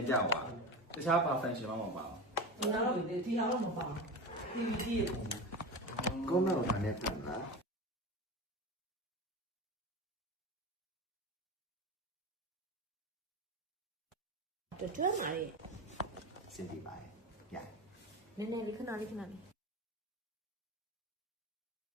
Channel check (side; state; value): both; normal; correlation 0.26